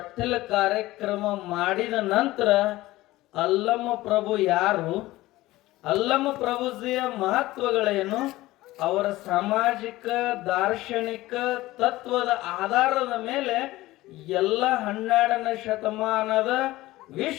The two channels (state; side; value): quieter; right; 17.7 dB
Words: ಕಾರ್ಯಕ್ರಮ ಮಾಡಿದ ನಂತರ ಅಲ್ಲಮ್ಮ ಪ್ರಭು ಯಾರು, ಅಲ್ಲಮ್ಮ ಪ್ರಭುಜಿಯ ಮಹತ್ವಗಳೇನು, ಅವರ ಸಾಮಾಜಿಕ ದಾರ್ಶನಿಕ ತತ್ವದ ಆಧಾರದ ಮೇಲೆ ಎಲ್ಲ 12ನೇ ಶತಮಾನದ